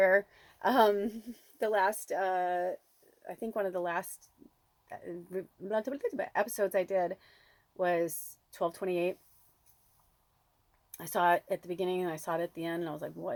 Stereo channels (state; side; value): identical; both; correlation 1.00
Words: The last, I think one of the last episodes I did was 1228. I saw it at the beginning and I saw it at the end and I was like,